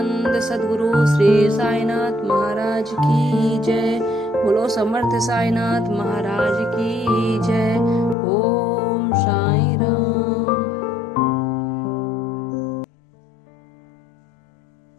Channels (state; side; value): drops out; right; at 8.2 s